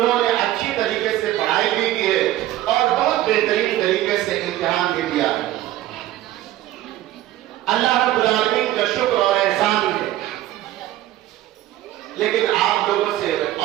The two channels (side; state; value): left; quieter; 14.3 dB